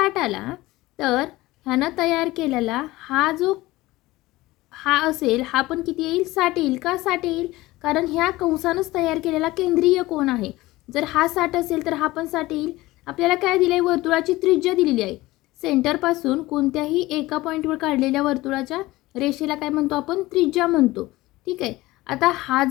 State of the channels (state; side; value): quieter; right; 18.9 dB